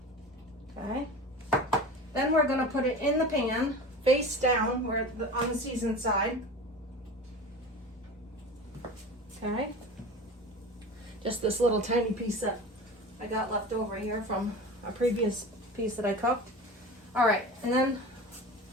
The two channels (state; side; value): normal; both; correlation 0.33